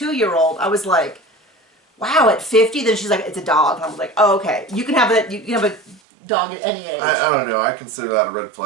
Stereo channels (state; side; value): drops out; left; at 6.0 s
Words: I was like, wow, at 50? Then she's like, it's a dog. And I was like, oh, okay. You can have dog at any age. I don't know. I consider that a red